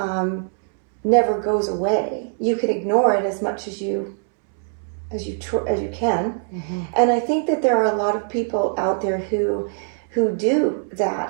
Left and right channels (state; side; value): silent; left; 64 dB below the other